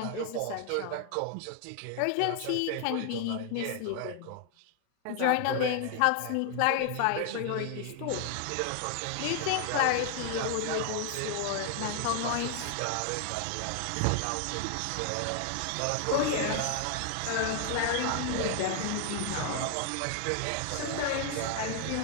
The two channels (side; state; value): both; different; correlation 0.00